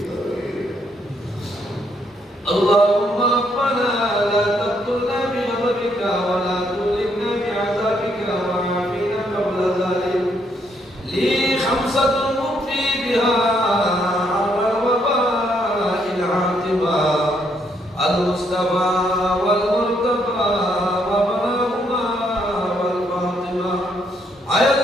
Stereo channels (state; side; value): normal; both; correlation 0.73